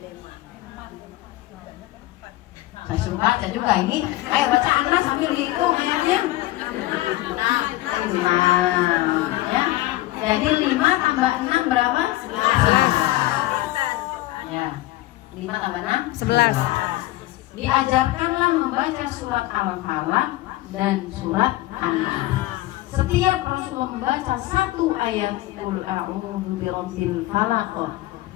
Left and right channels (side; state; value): right; quieter; 17.2 dB